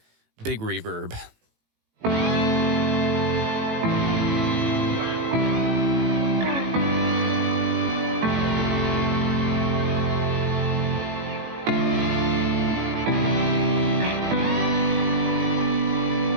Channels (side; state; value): left; late; 18 ms